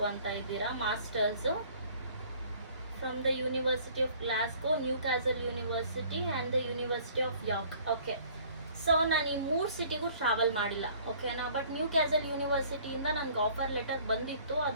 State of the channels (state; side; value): inverted; both; correlation -0.54